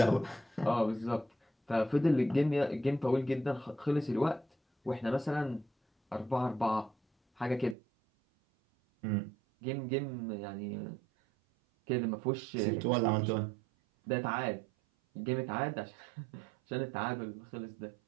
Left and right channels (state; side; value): drops out; left; at 7.8 s